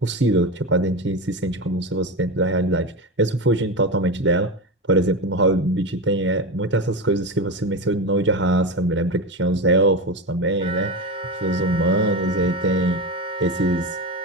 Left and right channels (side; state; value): both; normal; correlation 0.20